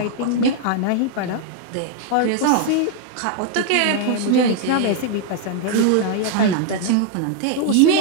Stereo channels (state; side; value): different; both; correlation 0.00